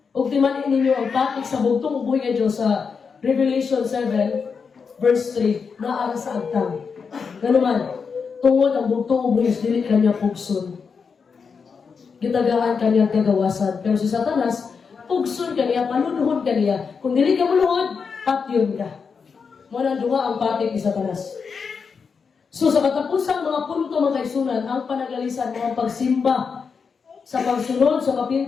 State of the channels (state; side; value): quieter; right; 5.7 dB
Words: O timanin ninyo ang patik sa bugtong ubuhay nga Diyos sa Revelation 7, verse 3, na ara sa agtang. Ganuman, tungod ang bugtong ubuhay, dili kanya pugson. Gitagaan kanya kagawasan. Pero si Satanas, pugson ka niya, panunuhod ka niya. Kung dili ka muluhod, patyon ka. Muna duha ang patik ni Satanas. So sa katapusang mga punto mga kaisunan, ang panagalisan, mga pagsimba, sa pagsunod, sa